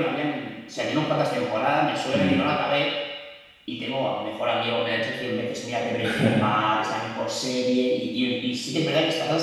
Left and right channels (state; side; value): identical; both; correlation 1.00